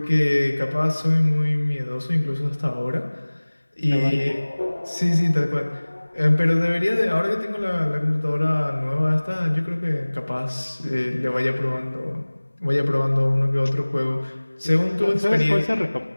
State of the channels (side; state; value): both; inverted; correlation -1.00